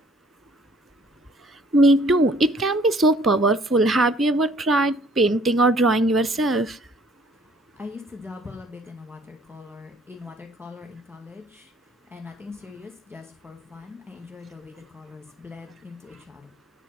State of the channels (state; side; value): normal; both; correlation 0.58